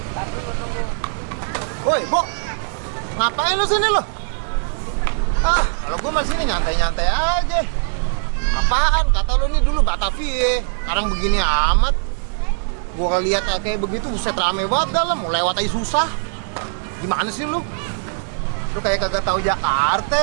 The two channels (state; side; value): silent; left; digital silence